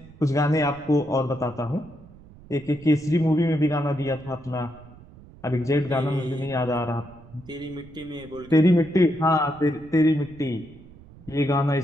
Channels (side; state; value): right; noise; rumble, 21 dB below the sound